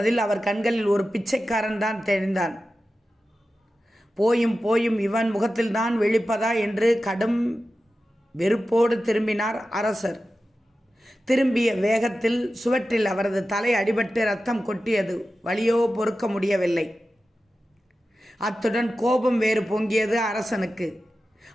அவர் கண்களில் ஒரு பிச்சைக்காரன் தான் தெரிந்தான். போயும் போயும் இவன் முகத்தில்தான் விழிப்பதா என்று கடும் வெறுப்போடு திரும்பினார் அரசர். திரும்பிய வேகத்தில் சுவற்றில் அவரது தலை அடிபட்டு ரத்தம் கொட்டியது. வலியோ பொறுக்க முடியவில்லை. அத்துடன் கோபம் வேறு பொங்கியது அரசனுக்கு.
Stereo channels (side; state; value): both; normal; correlation 0.93